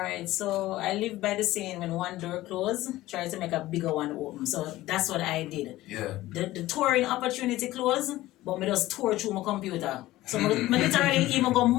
so I live by the saying, when one door closed, try to make a bigger one open. So that's what I did. Yeah. The touring opportunity closed, but me just tour through my computer. So me literally even go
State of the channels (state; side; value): quieter; right; 16.6 dB